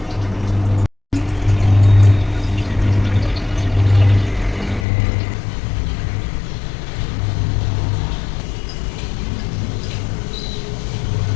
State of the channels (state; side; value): drops out; right; at 4.9 s